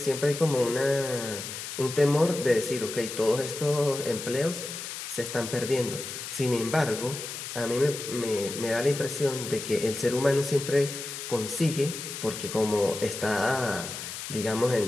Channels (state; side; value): noise; left; hiss, 8 dB below the sound